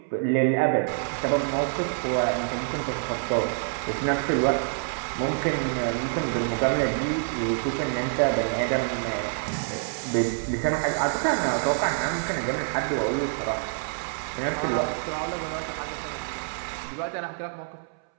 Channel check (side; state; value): left; silent; 60 dB below the other